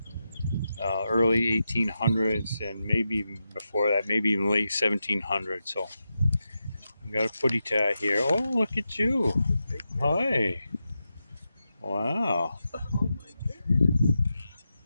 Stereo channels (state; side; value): inverted; both; correlation -0.89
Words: early 1800s and maybe even before that, maybe even late 1700s. So we got a footy tie here. Oh, look at you. Hi. Wow.